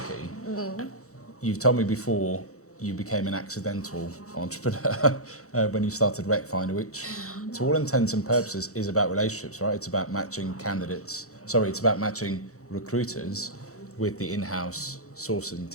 you've told me before you became an accidental entrepreneur when you started Recfindr, which to all intents and purposes is about relationships, right? It's about matching it's about matching recruiters with the in-house sourcing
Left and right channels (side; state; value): right; late; 0.65 ms